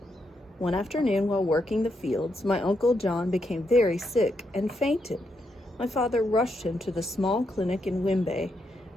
One afternoon while working the fields, my Uncle John became very sick and fainted. My father rushed him to the small clinic in Wimbe,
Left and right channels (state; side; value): normal; both; correlation 0.81